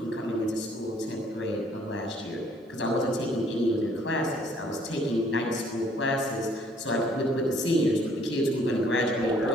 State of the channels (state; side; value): normal; both; correlation 0.62